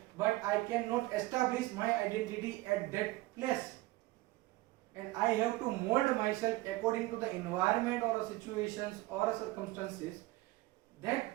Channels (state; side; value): quieter; left; 19.6 dB